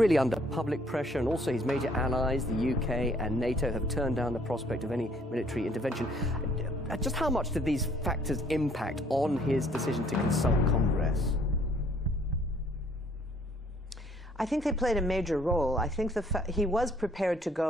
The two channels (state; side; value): normal; both; correlation 0.61